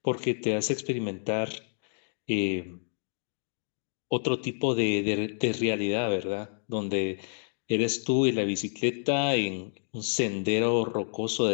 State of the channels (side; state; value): right; silent; digital silence